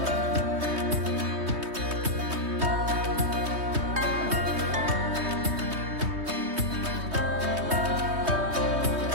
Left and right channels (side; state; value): left; late; 3.2 ms